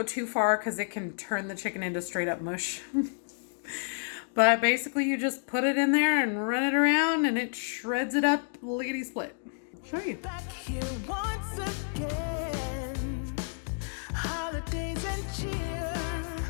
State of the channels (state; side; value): silent; right; digital silence